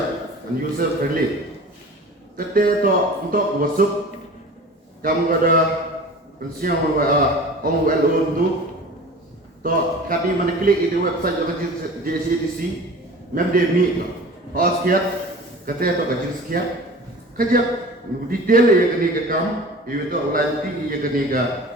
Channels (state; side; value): normal; both; correlation 0.40